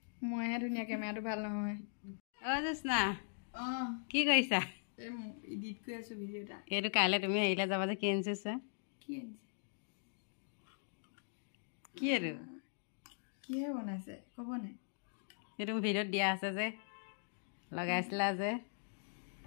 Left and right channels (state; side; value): silent; right; digital silence